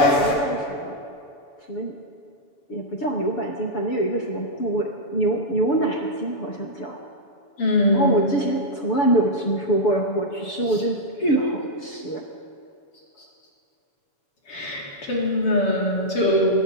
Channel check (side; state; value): right; late; 6.9 ms